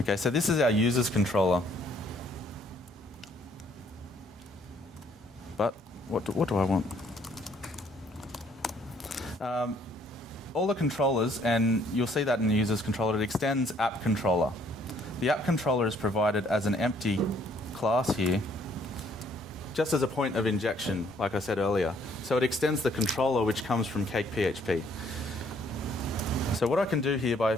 so this is our users controller. But what do I want? All the controllers, and you'll see that in the users controller, it extends app controller. The app controller is provided as an empty class here, just as a point of injection, like I said earlier. So it extends the controller which comes from CakePHP. So what I can do here by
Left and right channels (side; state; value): both; normal; correlation 0.64